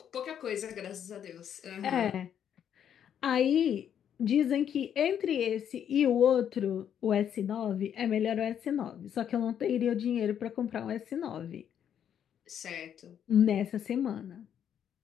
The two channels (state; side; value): quieter; right; 9.1 dB